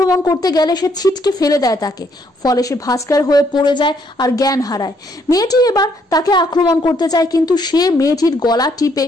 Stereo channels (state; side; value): normal; both; correlation 0.70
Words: করতে গেলে সে ছিটকে ফেলে দেয় তাকে, ফলে সে ভাস্কর হয়ে পড়ে যায় আর জ্ঞান হারায়। মেয়েটি এবার তাকে আক্রমণ করতে চায়, কিন্তু সে মেয়েটির গলা টিপে